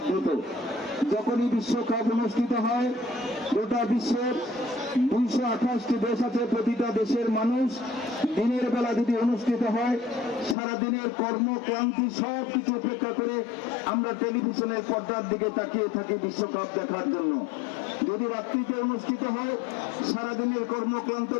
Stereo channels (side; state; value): right; drops out; at 10.6 s